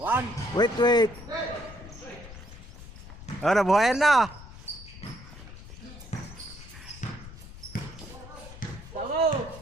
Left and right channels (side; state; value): left; noise; rumble, 15 dB below the sound